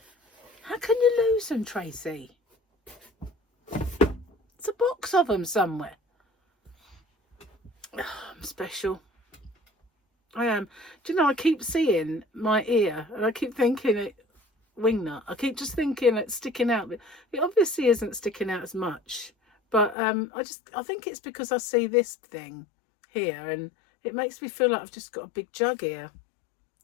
How can you lose them, Tracy? It's a box of them somewhere. Oh, I'm special. I am. Do you know, I keep seeing my ear and I keep thinking it wingnut. I keep just thinking it's sticking out, but it obviously isn't sticking out as much. But I think it's because I see this thing here and it makes me feel like I've just got a big jug here.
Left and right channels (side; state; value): right; drops out; at 20.0 s